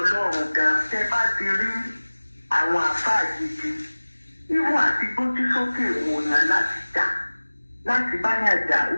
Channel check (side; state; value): both; inverted; correlation -1.00